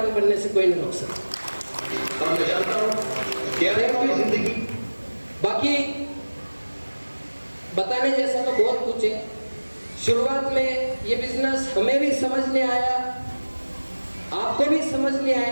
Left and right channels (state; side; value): inverted; both; correlation -1.00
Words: बनने से कोई नहीं रोक सकता। और मैं जानता हूं क्या है हमारी जिंदगी, बाकी बताने जैसा तो बहुत कुछ है। शुरुआत में ये बिजनेस हमें भी समझ नहीं आया, आपको भी समझ नहीं